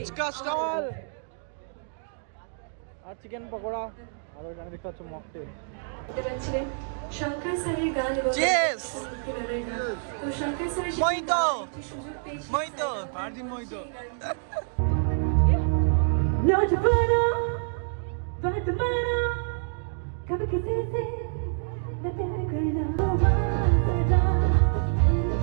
স্টল আর চিকেন পকোড়া আর ওইখানে দেখতে পাচ্ছ মকটেল। ছিলেন শঙ্কর স্যারের গান এবং Cheers! ভক্তিগানের গান। তো শঙ্কর স্যারের সাথে মহিতো! একটি সুযোগ পেয়েছি। মহিতো! আর দিন মই তো नौजवाना बात माना कभी किसी से न प्यार करना सदा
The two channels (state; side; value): silent; left; digital silence